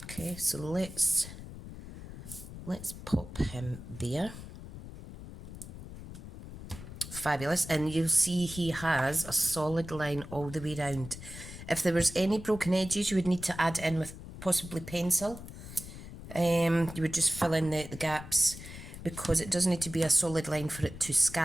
Okay, so let's pop him there. Fabulous. And you'll see he has a solid line all the way round. If there was any broken edges, you would need to add it in with possibly pencil. You would just fill in the gaps, because it does need to be a solid line for it to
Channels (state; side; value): noise; left; rumble, 13 dB below the sound